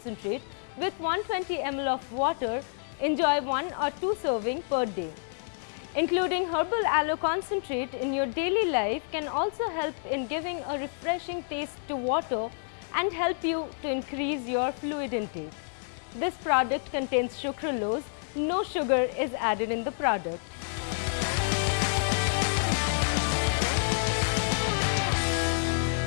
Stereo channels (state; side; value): silent; right; 59 dB below the other